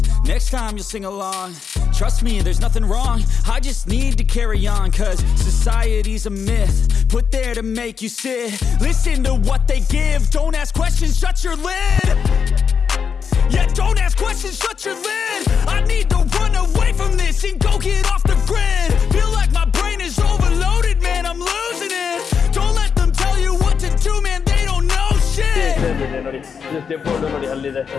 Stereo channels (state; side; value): quieter; right; 6.5 dB